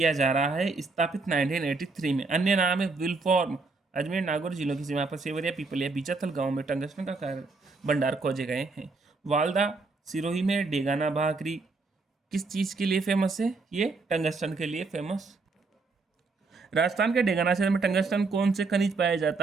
जा रहा है, स्थापित 1983 में। अन्य नाम है विलफॉर्म। अजमेर नागौर जिलों की सीमा पर सेवरिया, पीपलिया, बीचाथल गांव में टंगस्टन का कार्य भंडार खोजे गए हैं। वालदा सिरोही में डेगाना भाकरी किस चीज़ के लिए फेमस है? ये टंगस्टन के लिए फेमस। राजस्थान के डेगाना क्षेत्र में टंगस्टन कौन से खनिज पाया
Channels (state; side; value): quieter; left; 3.9 dB